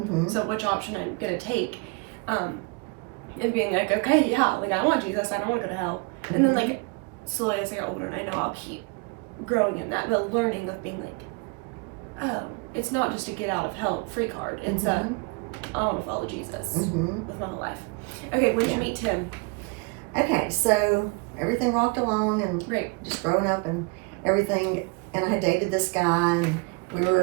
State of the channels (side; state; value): left; quieter; 30.4 dB